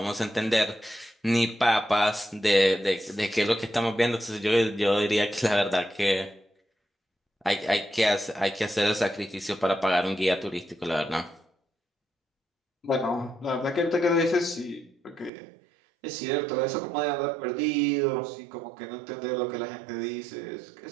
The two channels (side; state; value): left; drops out; at 15.3 s